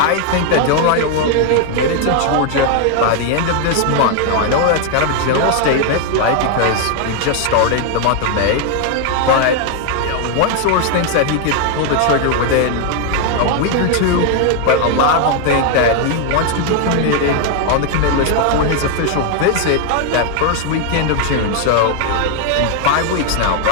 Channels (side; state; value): both; different; correlation 0.00